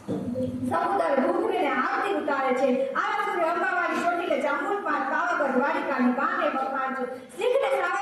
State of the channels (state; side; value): identical; both; correlation 1.00